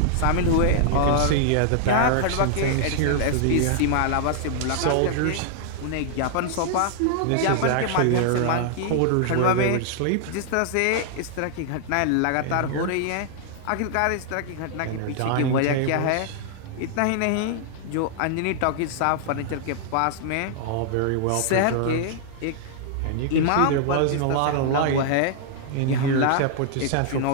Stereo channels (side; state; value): both; different; correlation -0.01